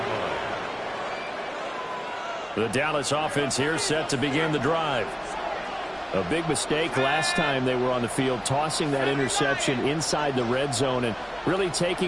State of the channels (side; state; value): both; identical; correlation 1.00